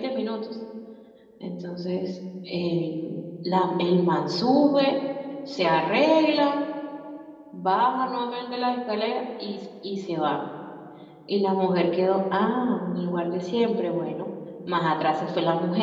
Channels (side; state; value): both; identical; correlation 1.00